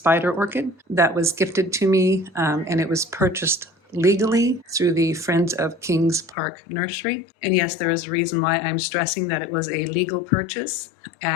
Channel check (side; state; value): right; drops out; at 6.4 s